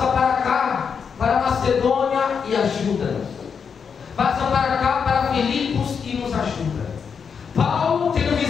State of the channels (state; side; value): quieter; right; 6.4 dB